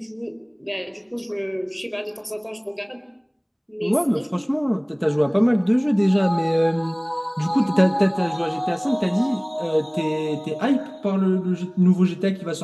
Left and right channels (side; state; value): both; identical; correlation 1.00